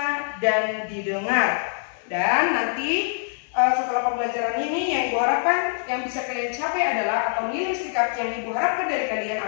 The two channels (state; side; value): silent; right; 62 dB below the other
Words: dan didengar. Dan nanti setelah pembelajaran ini yang Ibu harapkan yang bisa kalian capai adalah, atau nilai sikap yang Ibu harapkan dari kalian